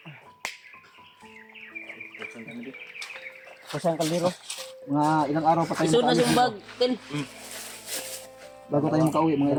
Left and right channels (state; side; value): identical; both; correlation 1.00